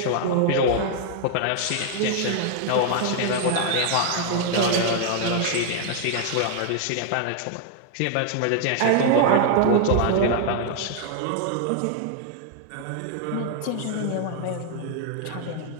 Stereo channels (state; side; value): different; both; correlation 0.00